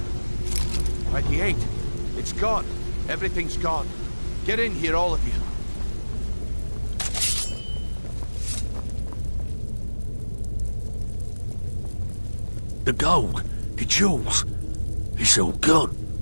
He ain't. It's gone. Everything's gone. Get in here, all of you. The gold, the jewels, it's all gone.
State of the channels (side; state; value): both; inverted; correlation -1.00